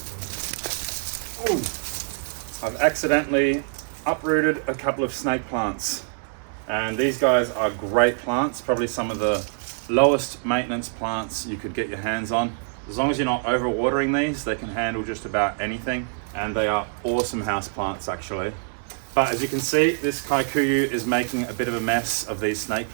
Ooh. I've accidentally uprooted a couple of snake plants. And these guys are great plants, probably some of the lowest maintenance plants you could get your hands on. As long as you're not overwatering these, they can handle just about anything. And they are awesome house plants actually. But as you can see, this kikuyu is making a bit of a mess of these snake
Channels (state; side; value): silent; left; digital silence